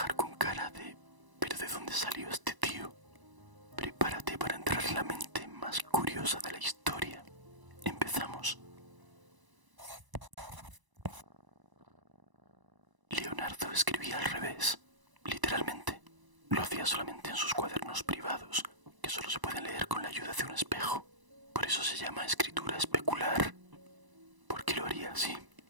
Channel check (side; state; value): left; late; 1.0 ms